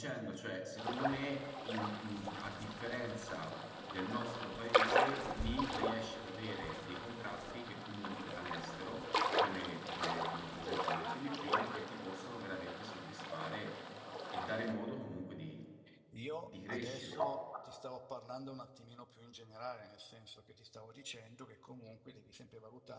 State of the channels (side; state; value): both; identical; correlation 1.00